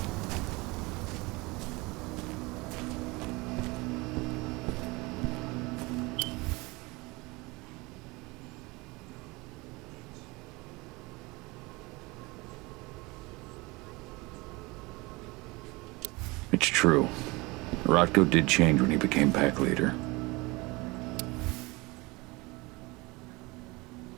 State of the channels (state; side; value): quieter; left; 24.1 dB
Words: It's true. Rotko did change when he became pack leader.